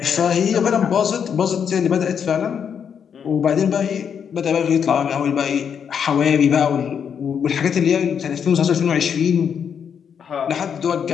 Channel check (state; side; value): quieter; right; 7.5 dB